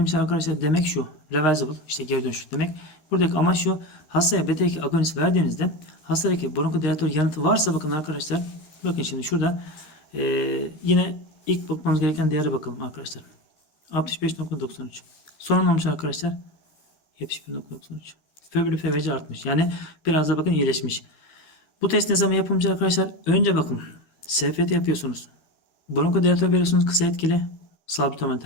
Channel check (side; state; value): right; late; 13 ms